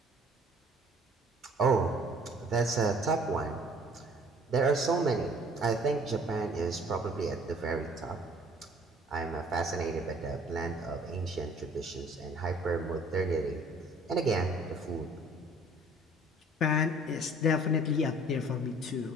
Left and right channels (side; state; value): both; normal; correlation 0.54